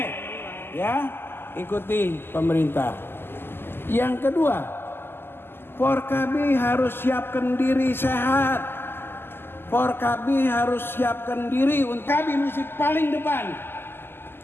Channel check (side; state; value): right; late; 0.11 ms